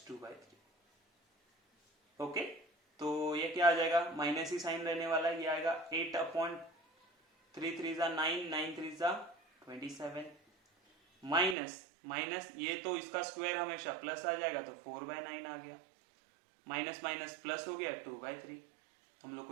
two by three. Okay, तो ये क्या आ जाएगा, माइनस ही साइन रहने वाला है, ये आएगा 8 अपॉन 3 3 जा 9, 9 3 जा 27 माइनस माइनस, ये तो इसका स्क्वायर हमेशा प्लस आ जाएगा तो 4/9 आ गया, माइनस माइनस प्लस हो गया 2/3। हम लोग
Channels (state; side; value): drops out; left; at 11.6 s